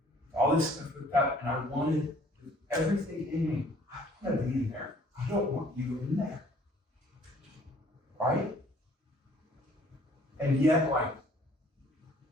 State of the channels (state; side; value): normal; both; correlation 0.57